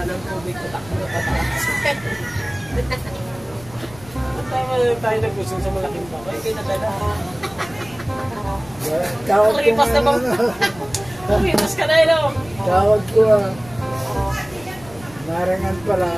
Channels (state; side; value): noise; left; rumble, 20 dB below the sound